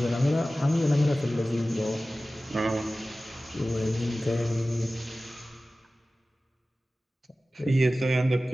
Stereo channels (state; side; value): normal; both; correlation 0.96